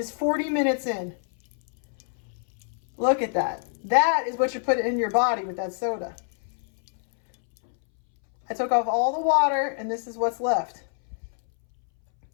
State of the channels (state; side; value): silent; right; 61 dB below the other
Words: 40 minutes in. Look at that. That is what you put in your body with that soda. I took off all the water, and this is what's left.